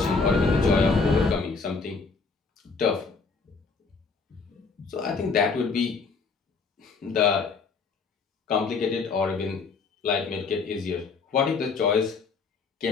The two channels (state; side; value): quieter; right; 4.7 dB